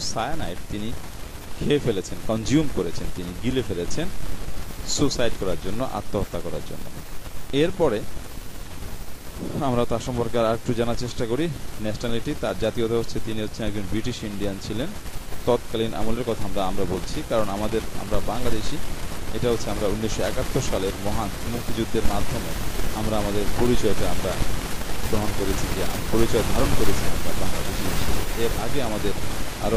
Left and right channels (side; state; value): both; identical; correlation 1.00